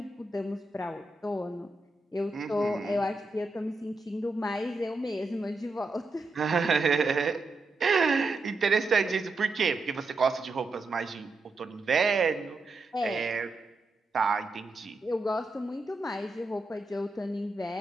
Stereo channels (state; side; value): quieter; left; 3.2 dB